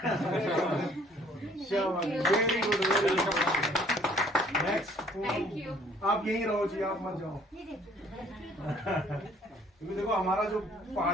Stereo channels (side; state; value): both; normal; correlation 0.58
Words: Very good, very good. Next, आप यहीं रहो जी, आप मत जाओ। क्योंकि देखो हमारा जो